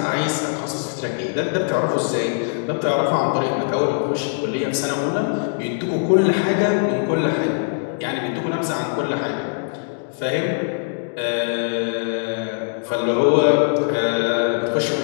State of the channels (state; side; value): silent; right; digital silence